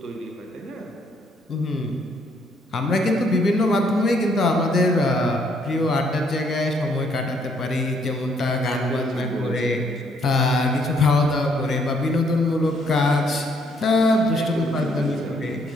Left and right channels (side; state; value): both; normal; correlation 0.68